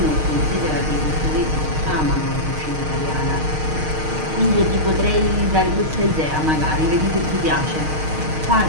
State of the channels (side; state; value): left; late; 6.5 ms